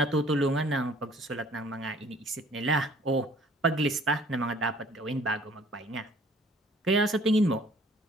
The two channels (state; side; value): normal; both; correlation 0.56